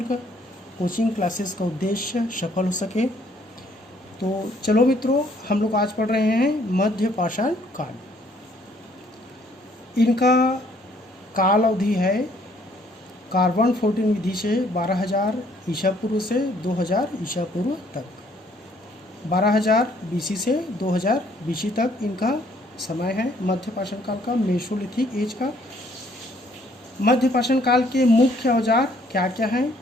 कोचिंग क्लासेस का उद्देश्य सफल हो सके। तो चलो मित्रों, हम लोग आज पढ़ रहे हैं मध्य पाषाण काल। इनका काल अवधि है कार्बन 14 विधि से 12,000 ईसा पूर्व से 2,000 ईसा पूर्व तक, 12,000 बीसी से 2,000 बीसी तक इनका समय है मध्य पाषाण काल का, मेसोलिथिक एज का। मध्य पाषाण काल के मुख्य औजार क्या क्या हैं?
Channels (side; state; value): both; normal; correlation 0.64